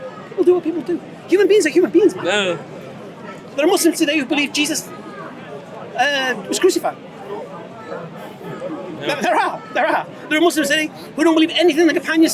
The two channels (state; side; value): identical; both; correlation 1.00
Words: People do what people do. Human beings are human beings, man. No. There are Muslims today who believe Jesus was crucified. There are. There are Muslims today who don't believe anything the companions